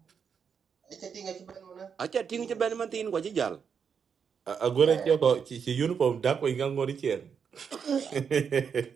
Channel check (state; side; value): quieter; left; 6.7 dB